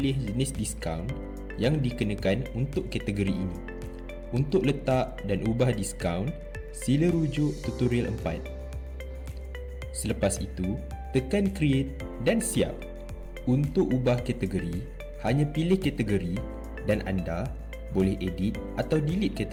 jenis diskaun yang dikenakan untuk kategori ini. Untuk letak dan ubah diskaun, sila rujuk tutorial 4. Selepas itu, tekan create dan siap. Untuk ubah kategori, hanya pilih kategori dan anda boleh edit atau delete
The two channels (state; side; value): identical; both; correlation 1.00